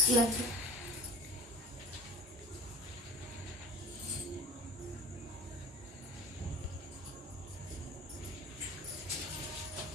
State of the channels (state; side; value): normal; both; correlation 0.36